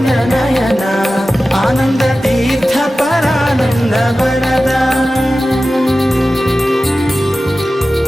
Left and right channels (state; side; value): normal; both; correlation 0.95